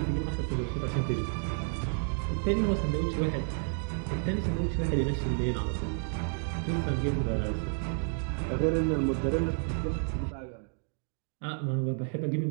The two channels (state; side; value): silent; left; 57 dB below the other